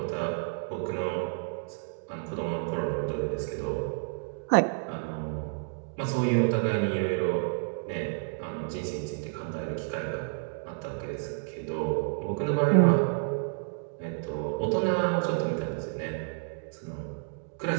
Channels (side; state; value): left; silent; digital silence